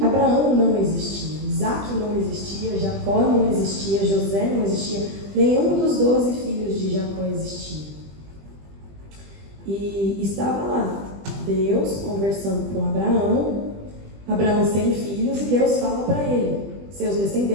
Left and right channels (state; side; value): late; left; 20 ms